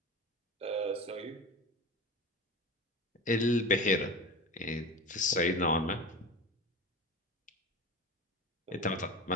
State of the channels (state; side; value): normal; both; correlation 0.29